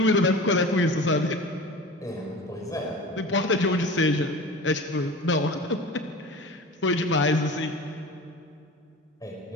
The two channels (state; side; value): normal; both; correlation 0.35